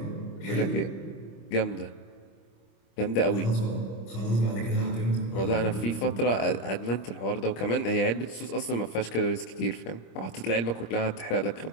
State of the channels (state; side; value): late; right; 26 ms